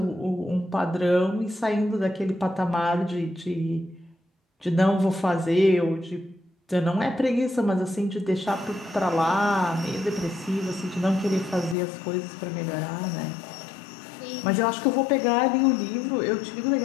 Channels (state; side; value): drops out; right; at 11.8 s